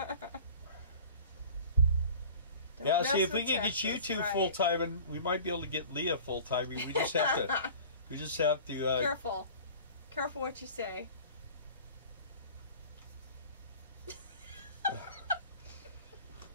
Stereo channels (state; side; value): inverted; both; correlation -0.42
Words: Yeah, see, if we can get you two full time, and we might be able to get Leah full time. We just have to. We just have to. Careful, careful what you say.